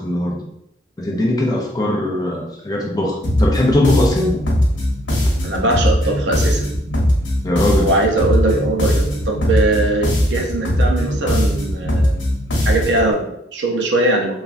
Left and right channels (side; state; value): both; normal; correlation 0.64